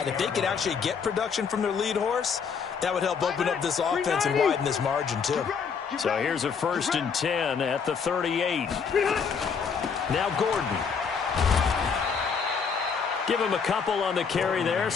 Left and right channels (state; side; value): quieter; right; 6.1 dB